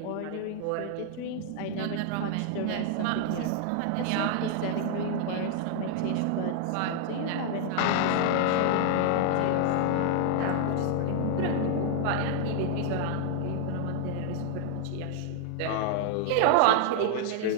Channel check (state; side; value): different; both; correlation 0.00